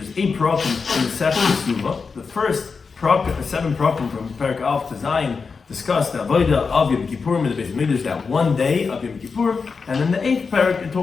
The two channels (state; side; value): quieter; right; 5.0 dB